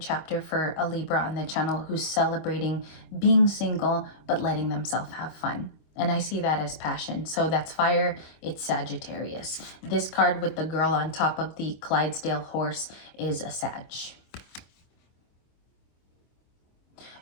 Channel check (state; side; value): late; right; 25 ms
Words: for a Libra on the channel who's celebrating being single, but letting themselves have fun. And I see that as passion. So that's fire. It's Sagittarius. This card with the girl on top of the Clydesdale horse is a Sag.